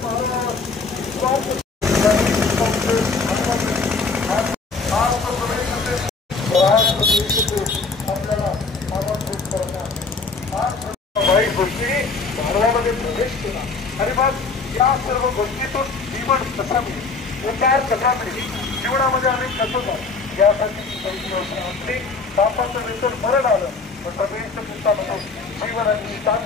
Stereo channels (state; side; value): quieter; right; 4.2 dB